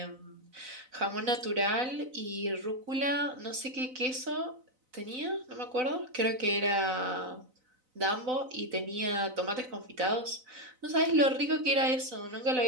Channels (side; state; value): left; late; 4.0 ms